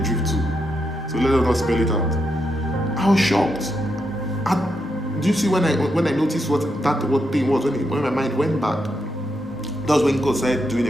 drift too. So let us not spell it out. I was shocked. Do you see when I noticed what thing was, when my mind went back? That was when God started doing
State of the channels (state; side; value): normal; both; correlation 0.82